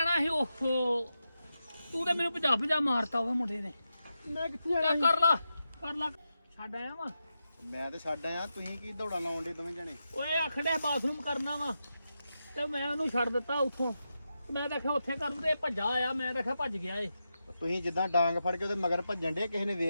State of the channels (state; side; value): inverted; both; correlation -0.88